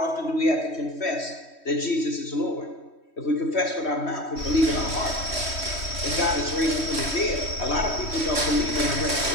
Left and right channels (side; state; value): right; late; 3.1 ms